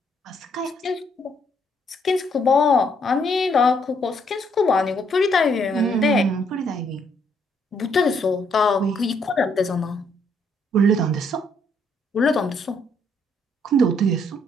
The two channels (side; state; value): both; normal; correlation 0.70